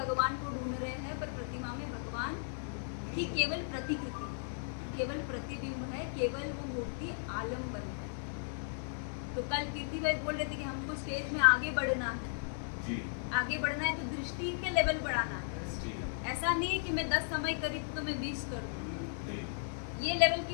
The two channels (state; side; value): silent; right; digital silence